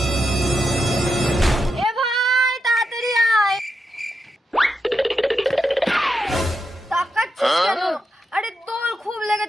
এ ভাই তাড়াতাড়ি আয়। তাকাচ্ছিস কেন? আরে তোর খুব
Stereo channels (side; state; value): both; normal; correlation 0.86